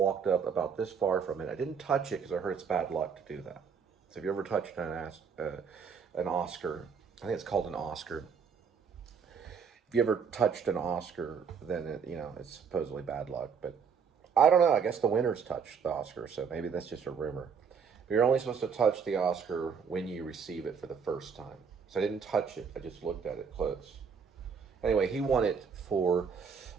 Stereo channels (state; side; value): quieter; left; 6.3 dB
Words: up about this far from it. I didn't touch it because I heard it's bad luck to do that. So if you ever touched an Oscar, I think it's called an Oscar. If you ever touched an Oscar, then it's supposedly bad luck. But I don't know. I guess the winners touched the Oscar, so maybe that's just a rumor. But you're only supposed to touch the Oscar when you receive it for the first time. So I didn't touch it. I just looked at it close. Anyway, he won it for